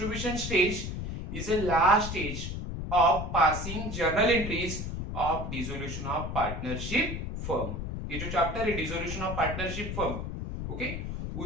stage is a last stage of passing journal entries of dissolution of partnership firm. ये जो chapter है dissolution of partnership firm, okay,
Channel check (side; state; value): left; noise; rumble, 5 dB below the sound